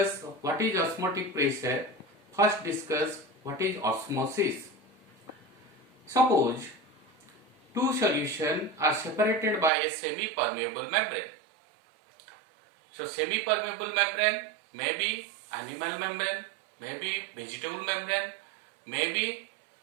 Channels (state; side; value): drops out; left; at 9.7 s